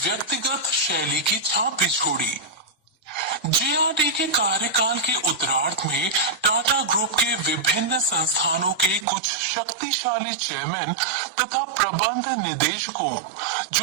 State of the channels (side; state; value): left; drops out; at 9.1 s